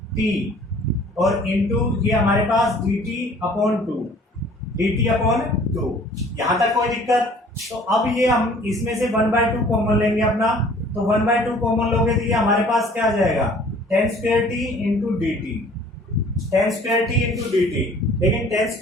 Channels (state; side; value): normal; both; correlation 0.53